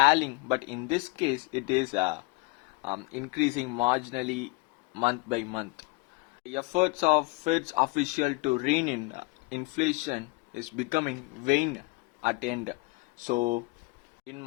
but in this case it is increasing marginally month by month. The efforts of Fed's official to rein in inflation is becoming vain at end. So, in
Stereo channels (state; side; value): quieter; right; 26.2 dB